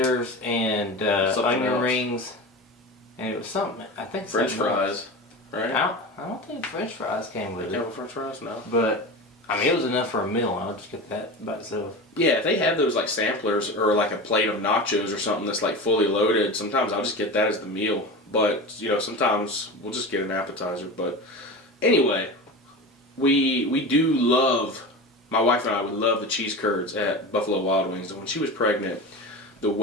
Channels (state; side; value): normal; both; correlation 0.28